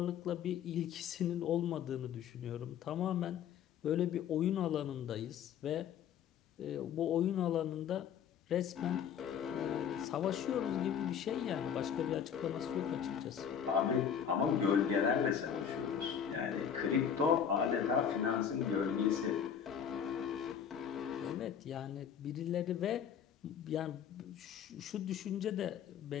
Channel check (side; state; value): right; quieter; 8.2 dB